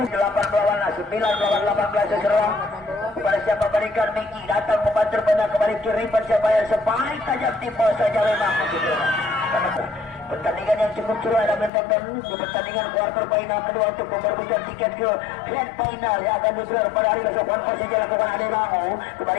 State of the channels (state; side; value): drops out; right; at 11.7 s